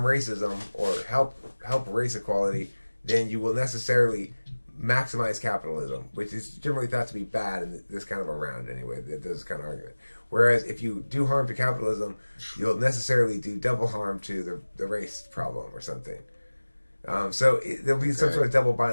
racism or help race equality, then you will necessarily maximize capitalism, which is generally thought to be bad in this kind of a round anyway, this kind of argument. Whereas if you do harm to capitalism, you'll necessarily do double harm to the race problem or something. So there'll be some sort of double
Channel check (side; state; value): both; inverted; correlation -1.00